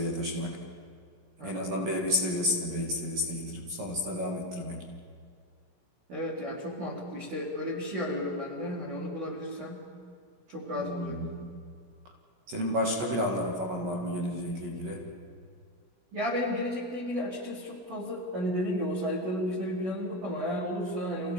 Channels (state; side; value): late; left; 16 ms